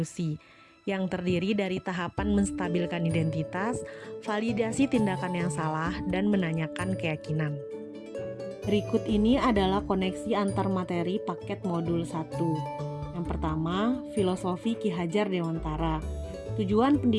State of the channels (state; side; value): identical; both; correlation 1.00